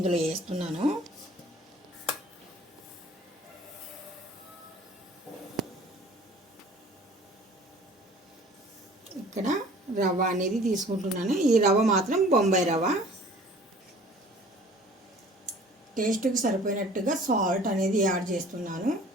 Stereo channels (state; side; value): normal; both; correlation 0.49